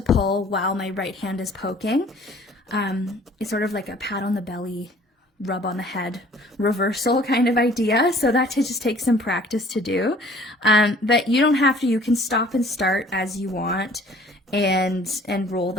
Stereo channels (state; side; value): normal; both; correlation 0.53